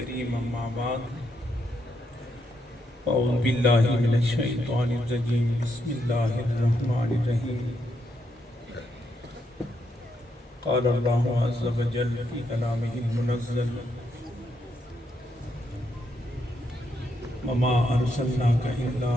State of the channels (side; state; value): both; normal; correlation 0.79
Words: أما بعد أعوذ بالله من الشيطان الرجيم بسم الله الرحمن الرحيم قال الله عز وجل في كلامه المنزل وما أرسلناك إلا